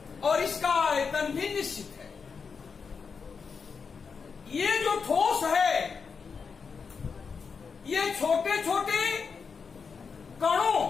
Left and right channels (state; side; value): quieter; right; 5.6 dB